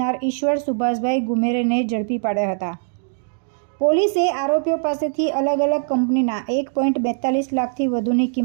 ઈશ્વર સુભાષભાઈ ગુમેરેને ઝડપી પાડ્યા હતા। પોલીસે આરોપીઓ પાસેથી અલગ અલગ કંપનીના 1.42 લાખથી વધુની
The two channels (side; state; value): left; silent; 65 dB below the other